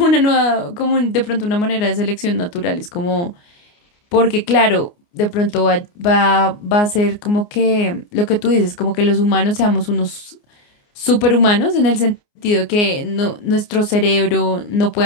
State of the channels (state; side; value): late; right; 29 ms